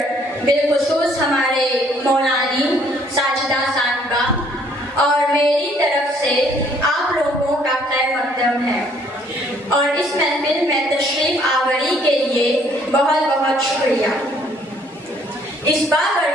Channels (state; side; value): normal; both; correlation 0.63